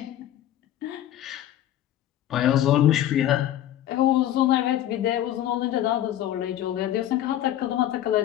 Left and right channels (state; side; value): quieter; right; 12.2 dB